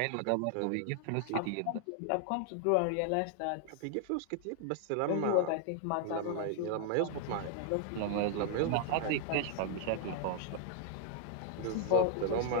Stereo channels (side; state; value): both; different; correlation 0.00